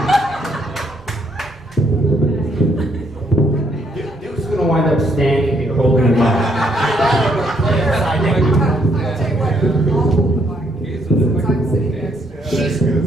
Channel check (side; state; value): both; normal; correlation 0.71